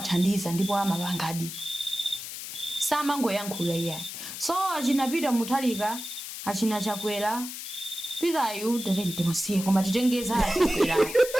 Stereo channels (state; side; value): noise; left; hiss, 9 dB below the sound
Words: ndipo amapangadi samangoyankhula iye. So achina Peter Mutharika achina Chakwera Pitayu tatenti musiye koma titengeza Chakwera